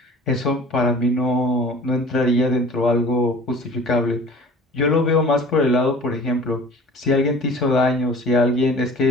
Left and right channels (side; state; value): both; normal; correlation 0.44